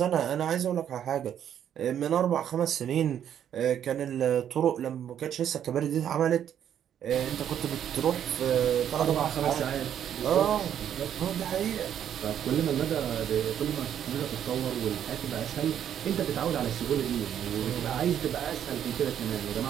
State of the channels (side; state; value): left; quieter; 9.7 dB